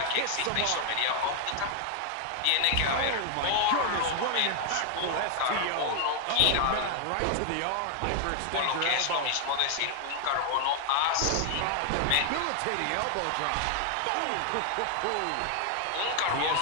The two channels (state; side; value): different; both; correlation 0.00